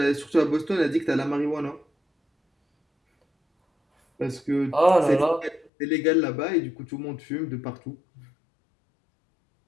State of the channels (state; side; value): drops out; right; at 5.7 s